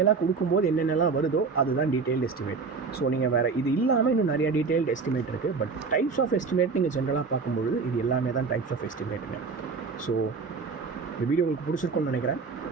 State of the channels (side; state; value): left; quieter; 4.8 dB